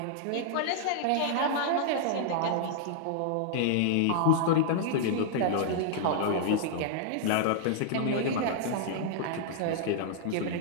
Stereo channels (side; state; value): both; different; correlation -0.01